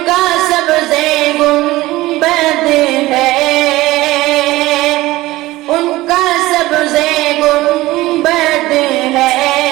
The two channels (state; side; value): quieter; left; 18.2 dB